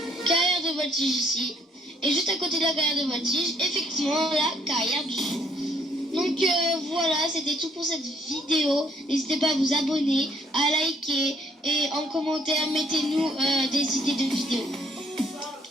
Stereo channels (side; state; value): both; normal; correlation 0.65